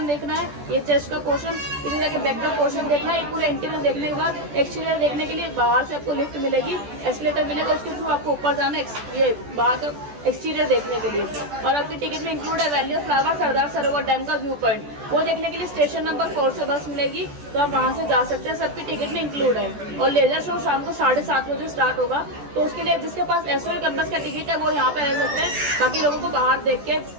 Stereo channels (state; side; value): late; left; 14 ms